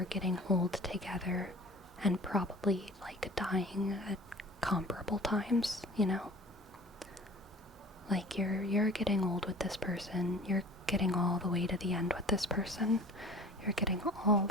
getting old together and probably like dying at comparable times, you know? Like you're getting old with this person. You're getting all the way to the end with this person. You're getting all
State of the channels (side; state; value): both; normal; correlation 0.44